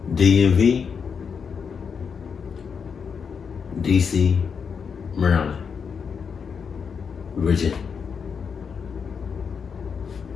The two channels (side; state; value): right; quieter; 6.3 dB